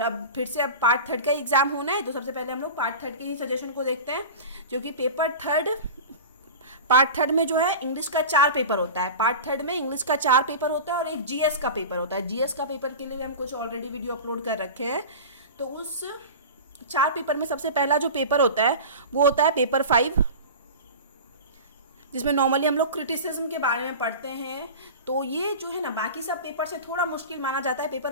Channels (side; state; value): both; inverted; correlation -0.31